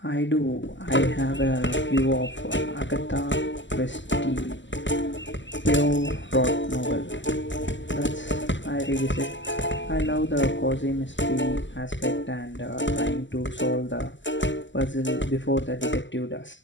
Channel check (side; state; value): right; late; 0.54 ms